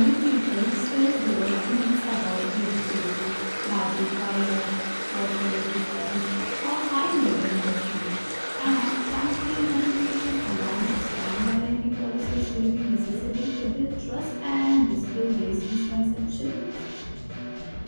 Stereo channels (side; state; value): both; inverted; correlation -1.00